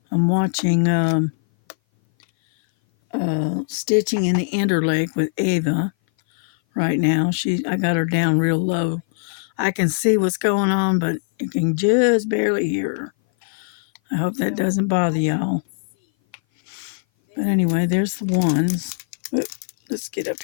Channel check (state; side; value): silent; right; 59 dB below the other